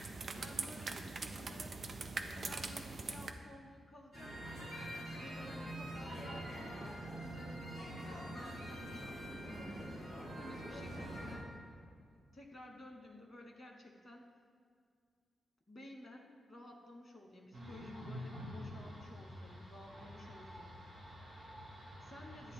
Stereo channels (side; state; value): both; normal; correlation 0.85